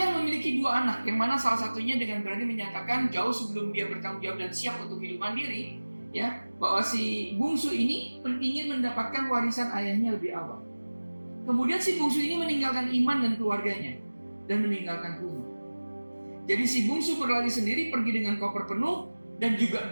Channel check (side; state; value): both; inverted; correlation -1.00